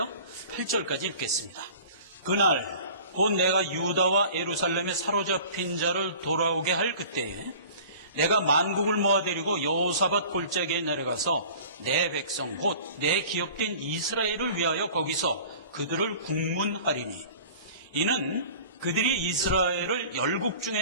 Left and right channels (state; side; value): inverted; both; correlation -0.44